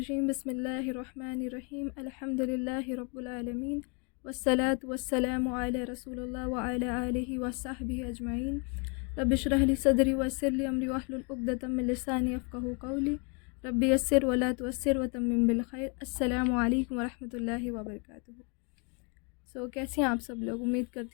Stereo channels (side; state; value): right; quieter; 34.0 dB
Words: بسم اللہ الرحمن الرحیم الحمد للہ رب العالمین والصلاة والسلام علی رسول اللہ وعلی آلہ وصحبہ اجمعین رب اشرح لی صدری ویسر لی امری واحلل عقدۃ من لسانی یفقہوا قولی رب یسر ولا تعسر وتمم بالخیر۔ السلام علیکم ورحمۃ اللہ وبرکاتہ۔ کیسے ہیں آپ سب لوگ؟ امید